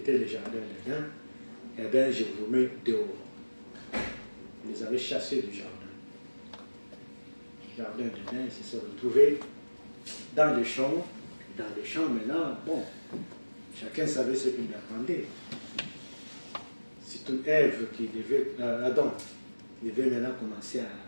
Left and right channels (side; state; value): both; inverted; correlation -1.00